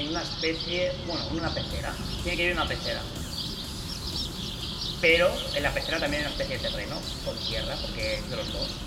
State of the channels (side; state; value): both; identical; correlation 1.00